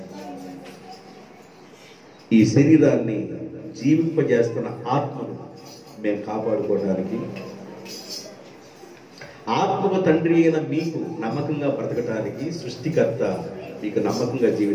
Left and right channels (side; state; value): both; identical; correlation 1.00